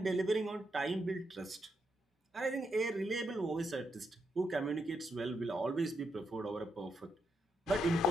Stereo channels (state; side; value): normal; both; correlation 0.82